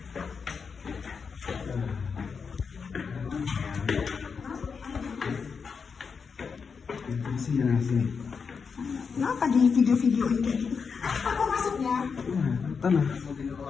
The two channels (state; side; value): quieter; right; 5.7 dB